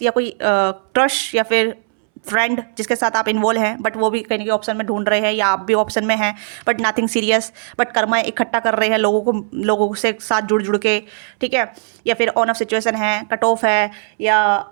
या कोई क्रश, या फिर फ्रेंड जिसके साथ आप इन्वॉल्व हैं, बट वो भी कहीं ना ऑप्शन में ढूंढ रहे हैं, या आप भी ऑप्शन में हैं, but nothing serious, but Karma इकट्ठा कर रहे हैं लोगों से साथ जुड़ के, ठीक है। या फिर ऑन ऑफ सिचुएशन है, कट ऑफ है, या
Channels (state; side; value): silent; left; 65 dB below the other